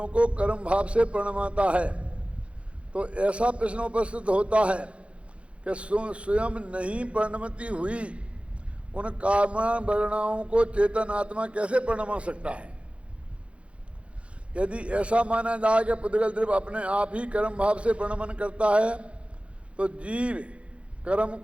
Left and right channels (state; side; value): late; left; 0.061 ms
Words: को कर्म भाव से प्रणमाता है तो ऐसा प्रश्न उपस्थित होता है कि स्वयं नहीं प्रणमती हुई उन कामना वर्णाओं को चेतन आत्मा कैसे प्रणमा सकता है। यदि ऐसा माना जाए कि पुद्गल द्रव्य अपने आप ही कर्म भाव से प्रणमन करता है तो जीव कर्म